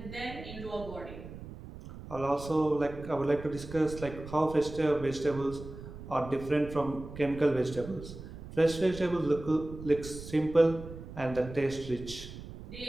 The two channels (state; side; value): noise; right; rumble, 13 dB below the sound